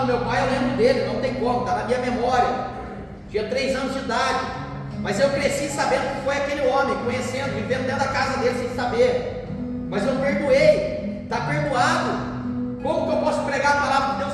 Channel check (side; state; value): both; identical; correlation 1.00